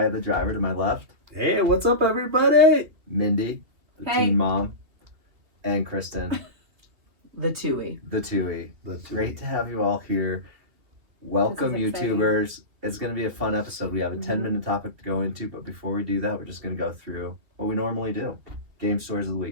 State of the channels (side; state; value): left; late; 2.9 ms